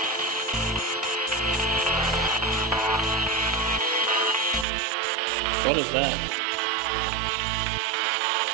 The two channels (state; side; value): drops out; left; at 4.7 s